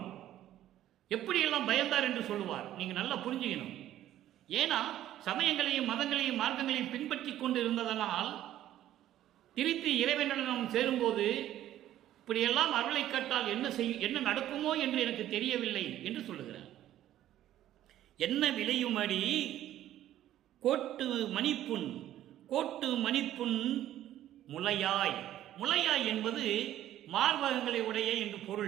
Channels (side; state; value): left; quieter; 12.7 dB